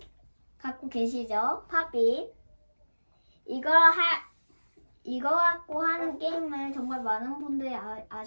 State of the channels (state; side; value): inverted; both; correlation -1.00